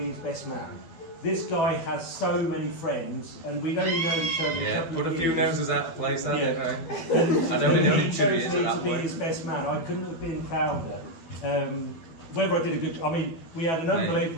his best man. This guy has so many friends, and we'd only known each other a couple of years. Put a few noses out of place, hadn't it, right? And he chose me to be his best man. I couldn't have been prouder. Whether I did a good job, I mean, we had an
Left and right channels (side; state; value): right; late; 12 ms